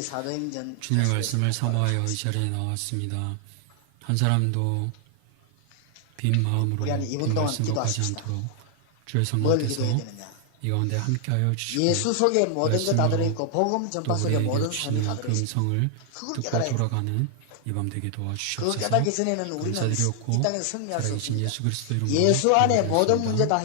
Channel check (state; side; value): different; both; correlation 0.00